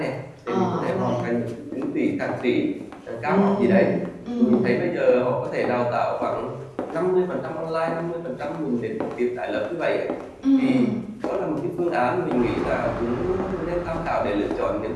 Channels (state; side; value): identical; both; correlation 1.00